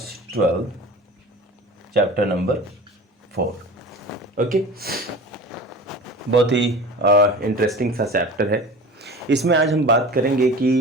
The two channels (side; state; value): both; normal; correlation 0.37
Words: 12 chapter number 4। Okay, बहुत ही इंटरेस्टिंग सा चैप्टर है। इसमें आज हम बात करेंगे